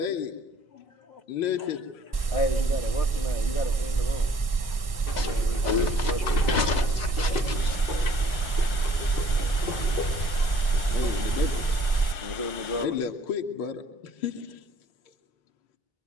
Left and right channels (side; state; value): right; late; 1.1 ms